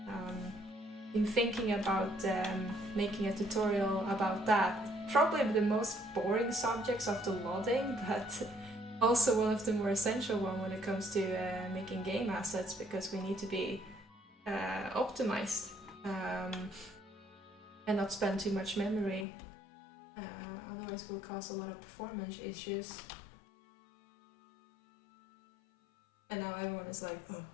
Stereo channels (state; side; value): drops out; right; at 19.2 s